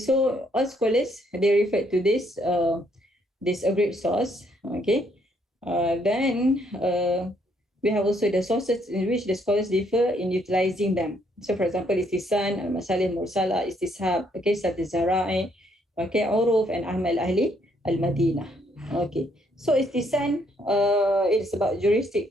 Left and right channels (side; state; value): both; normal; correlation 0.70